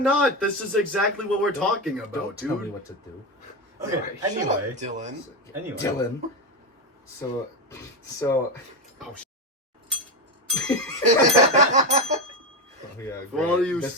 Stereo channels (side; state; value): both; normal; correlation 0.14